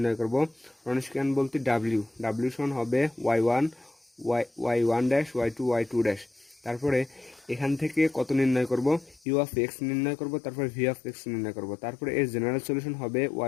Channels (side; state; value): right; drops out; at 9.2 s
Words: করব। রনস্কিয়ান বলতে w সমান হবে y1 ড্যাশ y2 ড্যাশ। তারপরে এখান থেকে কত নির্ণয় করব, ইউ অফ এক্স নির্ণয় করব, তারপরে ভি অফ এক্স নির্ণয় করব। তারপরে এর জেনারেল সলিউশন হবে